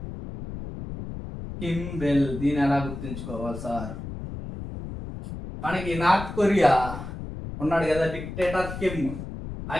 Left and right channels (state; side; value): noise; left; rumble, 9 dB below the sound